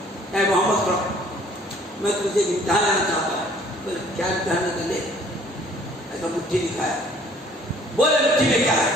اے محمد کرو میں تجھے امتحان لینا چاہتا ہوں بولے کیا امتحان کر لے ایسا مٹھی دکھایا بولے مٹھی میں کیا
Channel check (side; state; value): both; normal; correlation 0.56